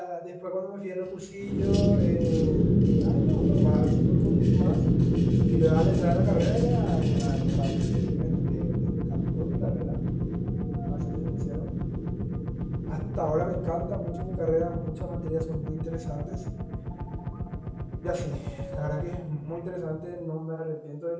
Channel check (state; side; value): identical; both; correlation 1.00